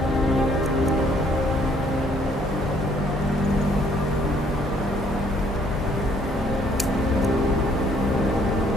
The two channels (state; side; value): normal; both; correlation 0.64